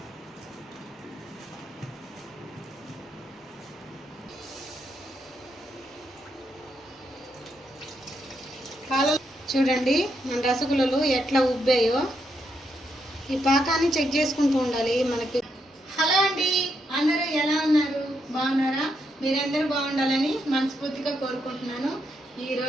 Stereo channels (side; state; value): both; normal; correlation 0.80